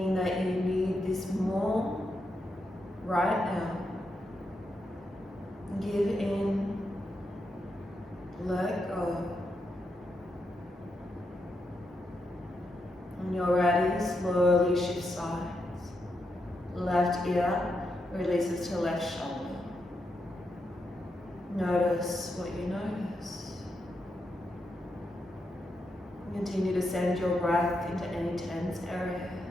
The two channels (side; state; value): both; normal; correlation 0.84